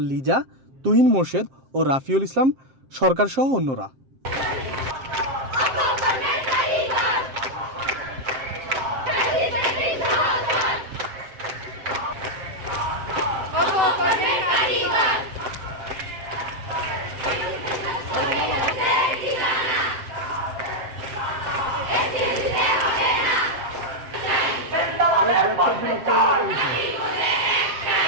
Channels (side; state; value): left; late; 7.6 ms